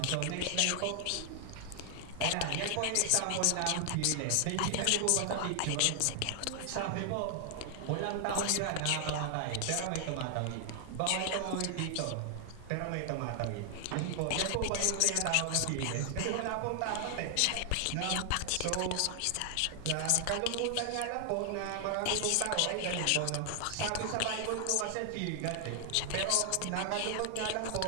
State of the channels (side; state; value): both; different; correlation 0.00